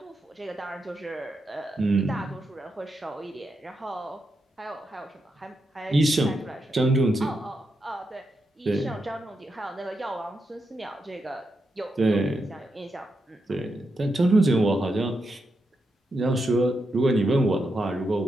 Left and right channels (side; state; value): both; normal; correlation 0.85